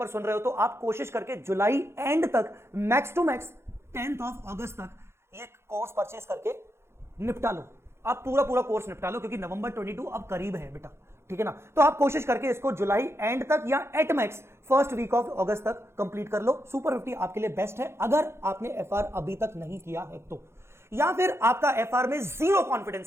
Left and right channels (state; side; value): late; left; 0.12 ms